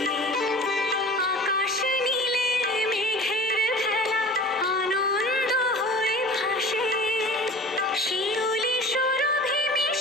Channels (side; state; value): both; normal; correlation 0.40